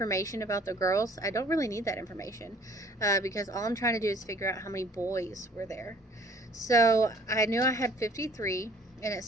about the girls. I don't really need that information because all I'm trying to do is figure out how many boys were there. So I knew I had 53, and it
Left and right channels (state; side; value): normal; both; correlation 0.55